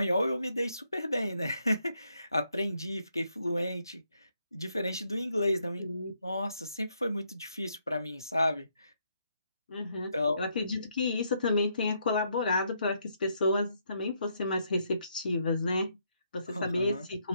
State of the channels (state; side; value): inverted; both; correlation -0.76